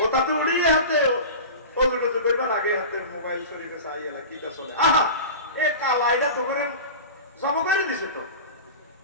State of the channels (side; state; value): both; inverted; correlation -0.32